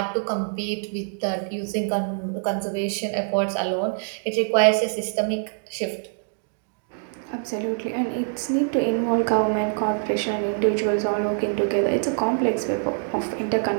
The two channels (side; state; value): left; silent; 62 dB below the other